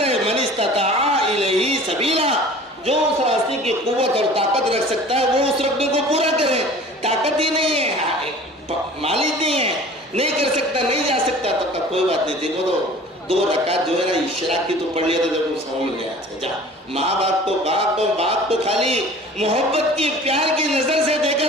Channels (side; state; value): both; normal; correlation 0.45